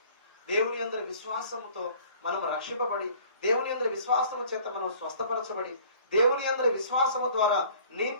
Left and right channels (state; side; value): inverted; both; correlation -0.52